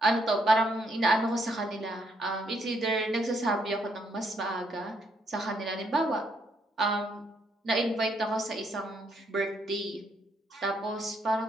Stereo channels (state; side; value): normal; both; correlation 0.73